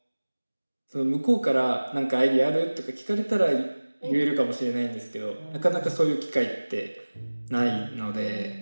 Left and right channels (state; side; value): inverted; both; correlation -1.00